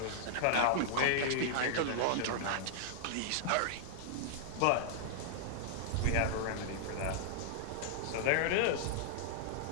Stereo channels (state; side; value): different; both; correlation -0.01